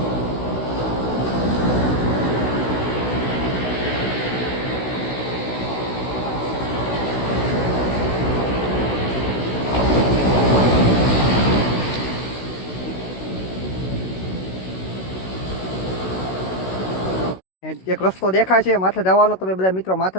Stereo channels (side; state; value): right; late; 16 ms